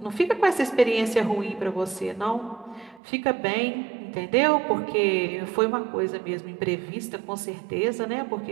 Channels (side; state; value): left; drops out; at 3.0 s